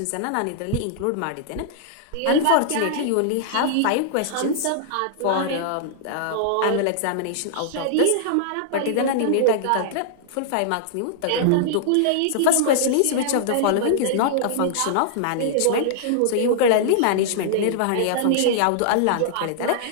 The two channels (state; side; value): different; both; correlation -0.01